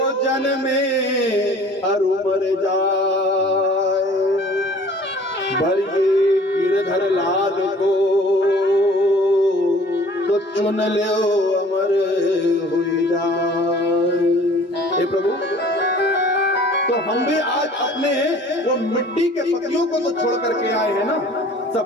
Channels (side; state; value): both; normal; correlation 0.50